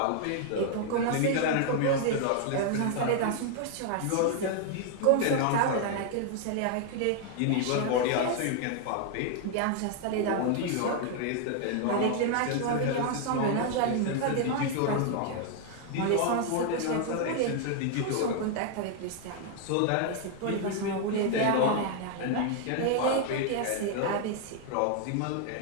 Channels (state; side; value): different; both; correlation 0.00